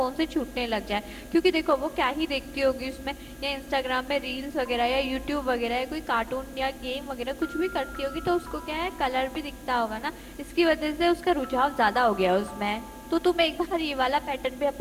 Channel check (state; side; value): noise; left; hum, 28 dB below the sound